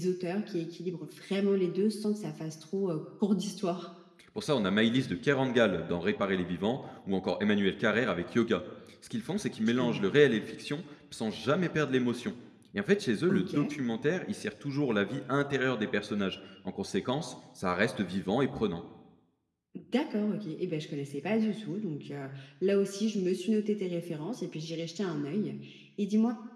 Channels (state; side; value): identical; both; correlation 1.00